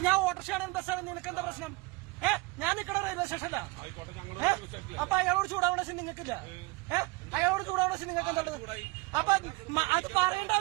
ഞാൻ ഓട്ടോറിക്ഷയാണ് ബസ്സാണ്, നിനക്ക് എന്താ പ്രശ്നം? ഞാൻ നിക്കണ റെയിൽവേ സ്റ്റേഷനിലാ. അപ്പൊ അയാളോട് ചൂടാവണ ശരി നിങ്ങൾക്കില്ല. അയാളോട് ചൂടാവണ ശരി നിങ്ങൾക്ക് എന്താ? അപ്പൊ അത് പറയേണ്ട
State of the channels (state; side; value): quieter; left; 24.3 dB